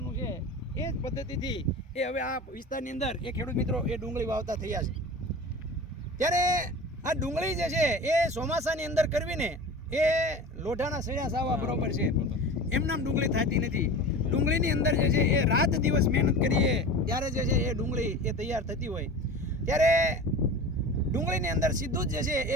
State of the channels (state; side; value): normal; both; correlation 0.33